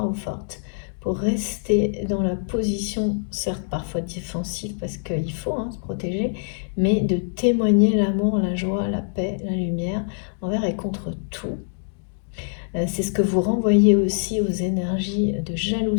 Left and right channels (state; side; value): silent; right; 63 dB below the other